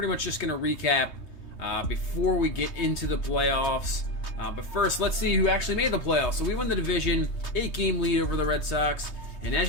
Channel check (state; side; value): late; right; 3.2 ms